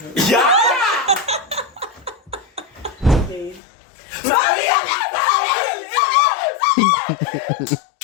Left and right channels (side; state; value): right; drops out; at 3.6 s